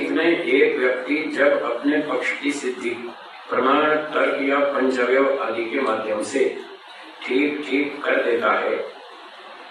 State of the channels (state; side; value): identical; both; correlation 1.00